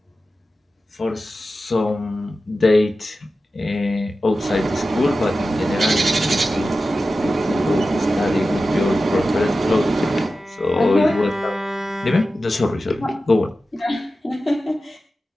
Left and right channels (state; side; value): normal; both; correlation 0.93